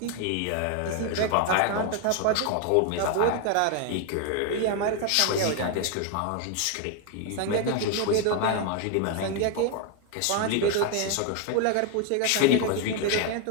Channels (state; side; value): different; both; correlation 0.01